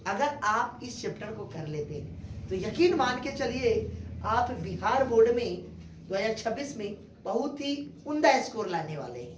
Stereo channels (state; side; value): identical; both; correlation 1.00